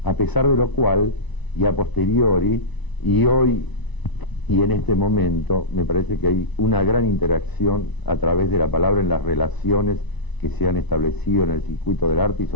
a pesar de lo cual, y a posteriori, y hoy y en este momento, me parece que hay una gran interacción a través de la palabra en las relaciones que se han establecido en el circuito del arte y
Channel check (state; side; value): late; right; 1.0 ms